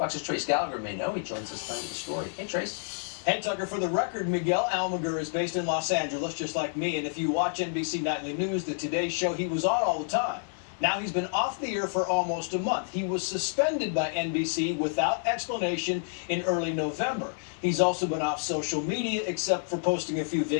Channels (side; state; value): right; silent; 59 dB below the other